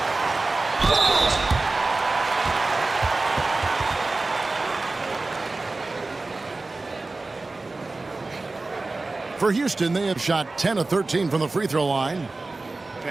For Houston, they have shot 10 of 13 from the free throw line.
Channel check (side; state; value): left; quieter; 3.3 dB